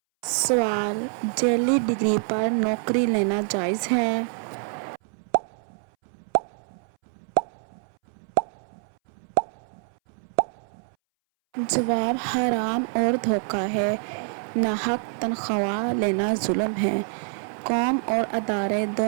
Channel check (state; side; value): silent; left; 61 dB below the other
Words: سوال: جعلی ڈگری پر نوکری لینا جائز ہے؟ جواب: حرام اور دھوکہ ہے، ناحق تنخواہ لینا ظلم ہے، قوم اور ادارے